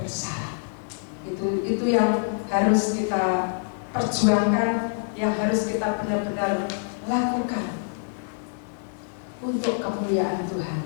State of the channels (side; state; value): right; silent; 57 dB below the other